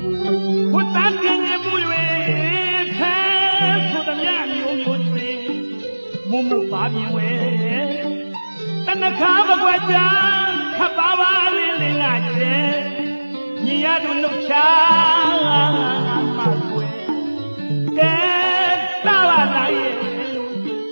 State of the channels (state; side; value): inverted; both; correlation -1.00